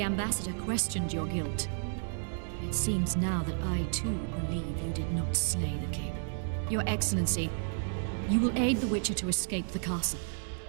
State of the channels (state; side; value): silent; left; 56 dB below the other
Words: ambassador questioned your guilt. It seems now that I too believe you did not slay the king. Your Excellency, you will aid the Witcher to escape the castle.